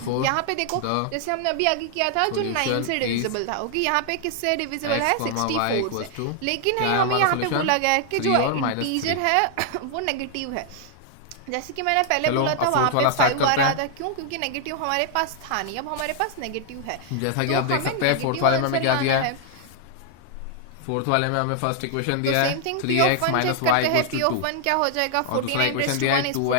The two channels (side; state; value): both; different; correlation 0.00